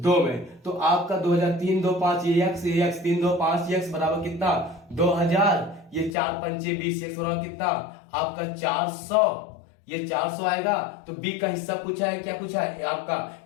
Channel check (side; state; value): right; drops out; at 6.1 s